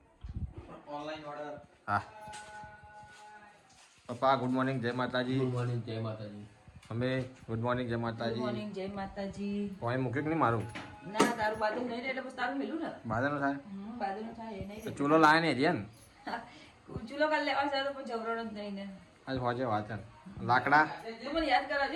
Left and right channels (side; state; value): both; identical; correlation 1.00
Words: ઓનલાઈન ઓર્ડર હા પપ્પા ગુડ મોર્નિંગ જય માતાજી ગુડ મોર્નિંગ જય માતાજી અમે ગુડ મોર્નિંગ જય ગુડ માતાજી મોર્નિંગ જય માતાજી પોઈ મૂક્યું કે નહીં મારું ના તારું બાજુ નહીં એટલે બસ તારું મેલું ને બાદલ થાય બાજુનું થાય એ નહીં તો ચૂલો લાવે ને રિયન ચૂલો કાલ લેવા છે તો પણ જવરણ જ નહીં ને આજ હોજે વાત છે લાકડા તો મને યાદ